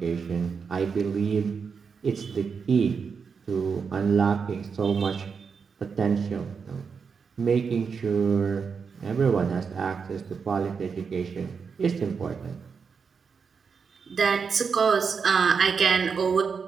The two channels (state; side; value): quieter; left; 5.8 dB